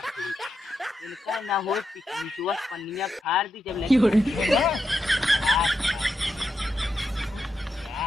इनका ना हो पिछुआ पन्निया फाड़ दी जब लगी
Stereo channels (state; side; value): normal; both; correlation 0.85